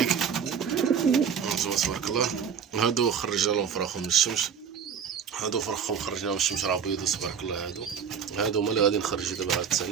تبارك الله. هادو خرجنا لهم فراخهم من الشمس، هادو فرخهم خرجنا من الشمس راه بيضو تبارك الله. هادو هما اللي غادي نخرجو دابا هاد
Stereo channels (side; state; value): left; quieter; 7.3 dB